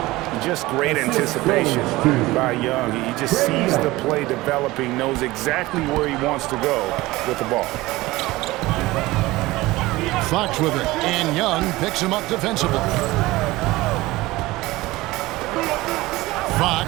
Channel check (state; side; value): quieter; left; 19.3 dB